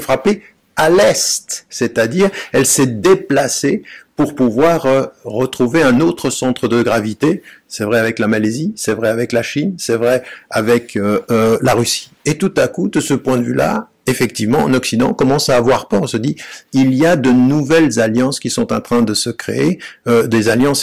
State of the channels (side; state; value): both; identical; correlation 1.00